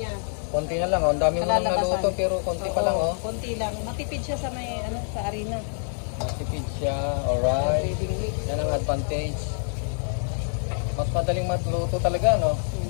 Konti na lang. Oh. Ang dami mo nang naluto pero konti pa lang. Oh. Konti lang. Matipid siya sa may sa arena. Matipid siya. Alright. Breathing mix. Yan ang advantage. Mas madaling matluto talaga, no?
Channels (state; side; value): silent; right; digital silence